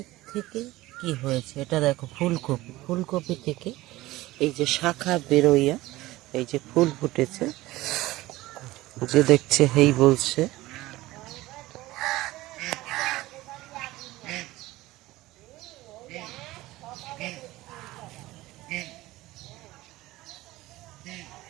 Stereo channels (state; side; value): quieter; left; 18.0 dB